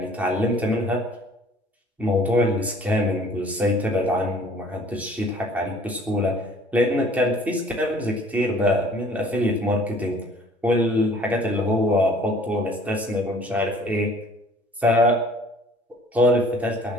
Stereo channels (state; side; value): normal; both; correlation 0.53